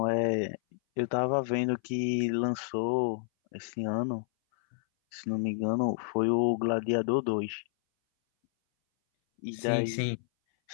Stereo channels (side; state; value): right; silent; 58 dB below the other